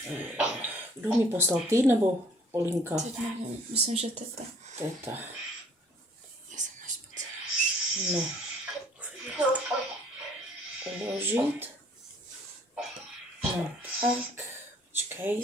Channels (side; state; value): both; normal; correlation 0.58